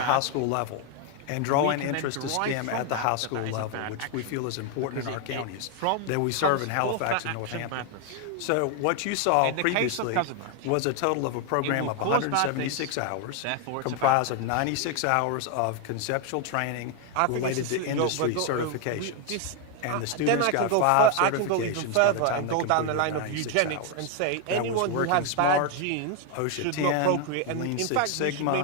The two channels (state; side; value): different; both; correlation 0.01